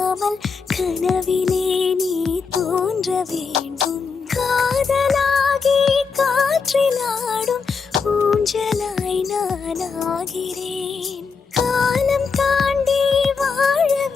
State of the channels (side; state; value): right; quieter; 5.2 dB